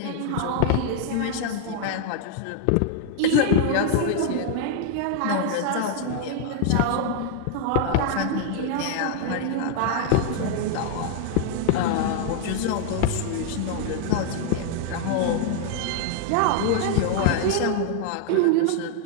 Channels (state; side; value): different; both; correlation 0.00